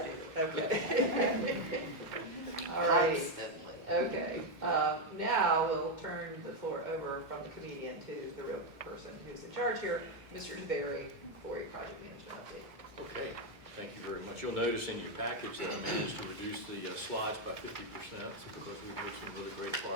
do. Okay. All right. Constantly. Okay. Now we'll turn the floor over from the comedian to the real person who's in charge here, Mr. DeBerry, for a project management update. Okay, thank you very much. You'll notice in your package that I managed to reduce the slides by 50% because we've made some really great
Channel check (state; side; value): normal; both; correlation 0.04